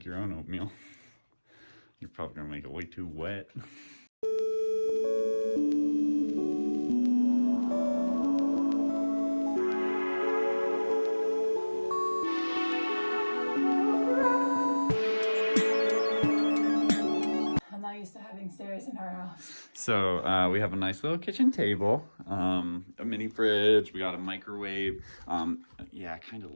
your own oatmeal. You're probably gonna make it way too wet. I'm not used to having stairs in our house. So we have a nice little kitchen table, a mini fridge, we got a microwave. Yeah, kind of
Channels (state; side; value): inverted; both; correlation -1.00